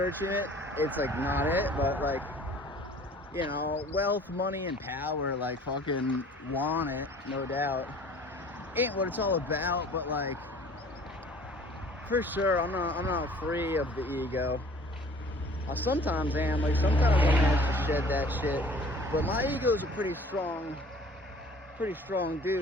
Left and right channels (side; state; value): both; normal; correlation 0.50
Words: it, it's, like, not it. But, like, you know, wealth, money, and power, like, fucking want it, no doubt. Ain't what it's all about, but, like, for sure, I'm not free of the ego. I sometimes am, like, sometimes I manage to shed that shit, but my ego's a pretty strong